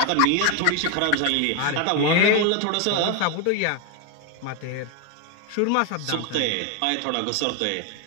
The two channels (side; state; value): both; different; correlation 0.01